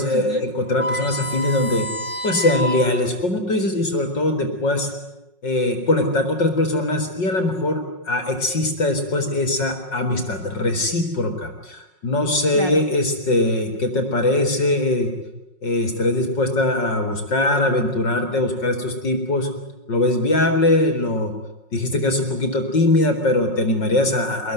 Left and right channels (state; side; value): late; right; 5.5 ms